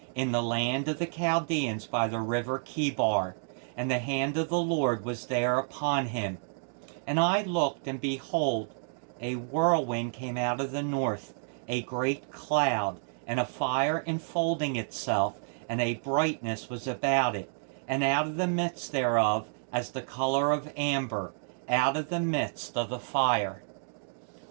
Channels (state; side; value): silent; left; digital silence